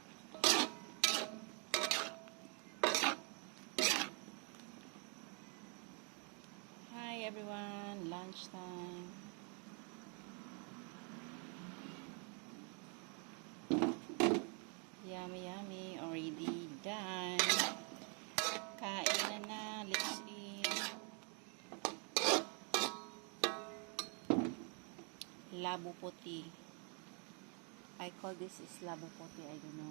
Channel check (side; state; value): left; quieter; 37.4 dB